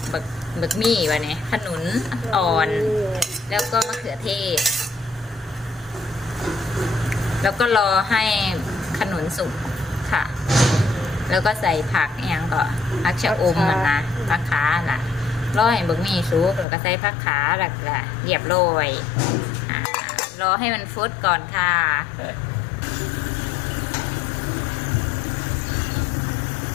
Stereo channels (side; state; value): right; drops out; at 16.7 s